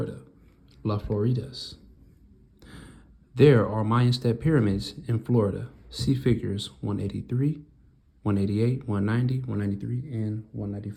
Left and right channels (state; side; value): identical; both; correlation 1.00